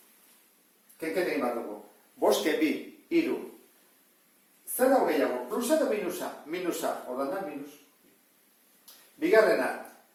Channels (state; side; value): identical; both; correlation 1.00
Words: Kenket egin bat dugu. 5, 2, 3. Zer dago gehiago? Plusa eta minusa? Minusa. Orduan da, minus. Bigarrena.